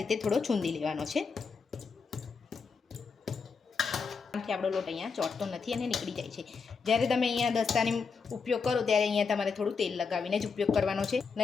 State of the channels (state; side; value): quieter; right; 5.2 dB